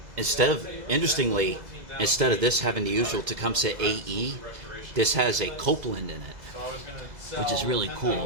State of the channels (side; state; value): left; late; 2.0 ms